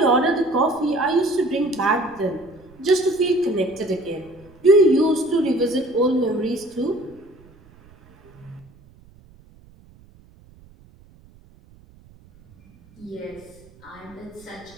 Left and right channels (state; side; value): noise; right; rumble, 26 dB below the sound